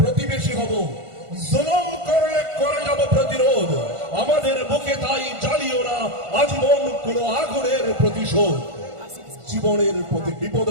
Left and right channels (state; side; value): late; left; 1.5 ms